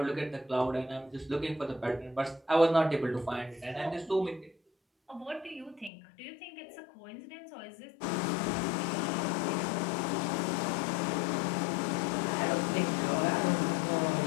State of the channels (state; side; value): drops out; right; at 5.9 s